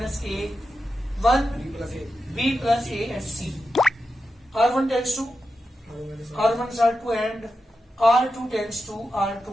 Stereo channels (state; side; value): normal; both; correlation 0.89